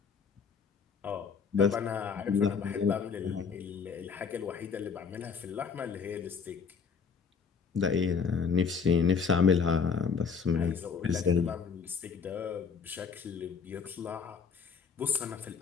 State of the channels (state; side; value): quieter; right; 5.9 dB